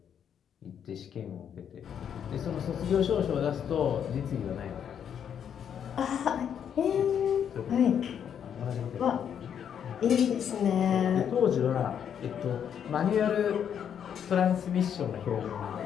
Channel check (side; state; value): right; quieter; 8.5 dB